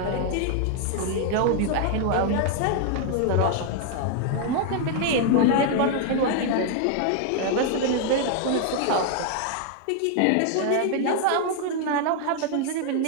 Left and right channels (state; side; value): different; both; correlation 0.00